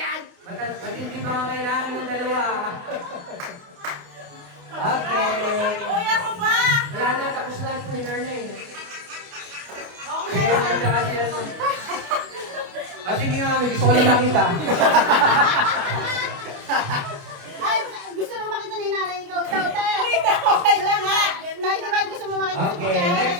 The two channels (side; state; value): left; late; 28 ms